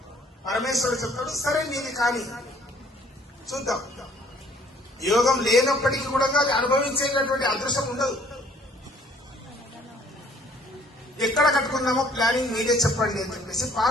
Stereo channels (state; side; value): normal; both; correlation 0.60